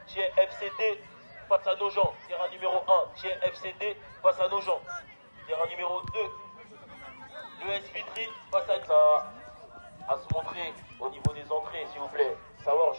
qui est FCT face à Nogent. Terrain numéro 1, qui est FCT face à Nogent. Terrain numéro 2, l'ES Vitry face à ça à se montrer au niveau des entrées, s'il vous plaît. Savoir,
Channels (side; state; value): both; inverted; correlation -1.00